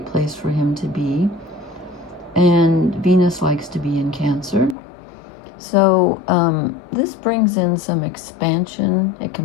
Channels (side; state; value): right; drops out; at 4.8 s